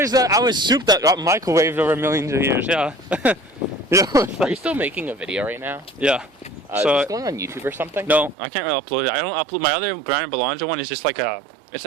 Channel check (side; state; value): left; drops out; at 8.3 s